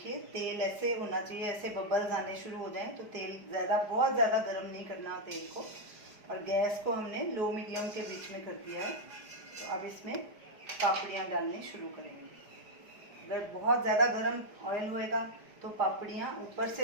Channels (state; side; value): late; left; 4.9 ms